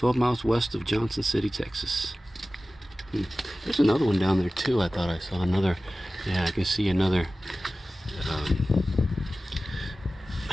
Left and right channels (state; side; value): normal; both; correlation 0.96